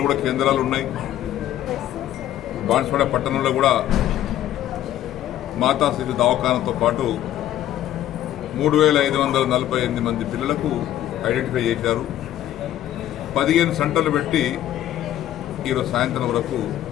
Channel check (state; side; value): quieter; right; 12.5 dB